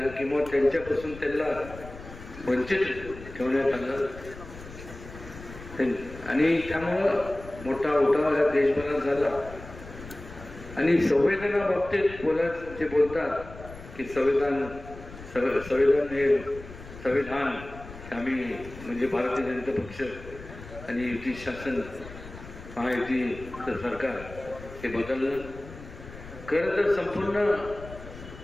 किंवा त्यांच्यापासून त्यांना वंचित ठेवण्यात आलं. आणि त्यामुळं मोठा उठाव या देशभरात झाला. आणि संविधाना बाबतीत जे बोलतात की संविधान आम्ही म्हणजे भारतीय जनता पक्ष आणि युती शासन महायुतीचं सरकार हे बदललं. खरं तर संपूर्ण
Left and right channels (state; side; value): noise; left; rumble, 15 dB below the sound